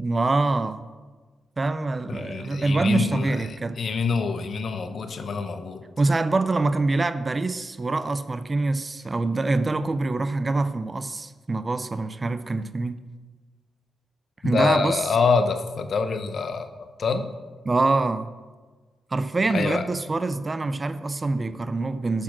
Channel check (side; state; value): both; normal; correlation 0.89